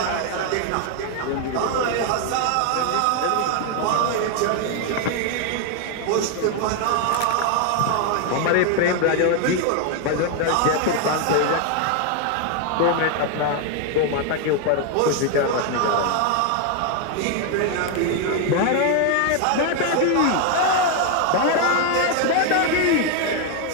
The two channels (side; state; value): both; different; correlation 0.01